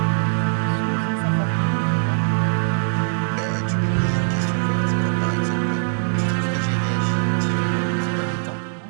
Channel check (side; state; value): left; silent; digital silence